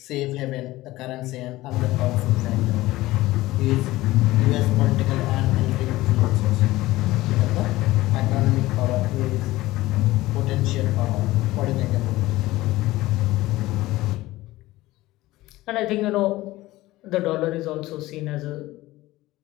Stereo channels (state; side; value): quieter; right; 17.8 dB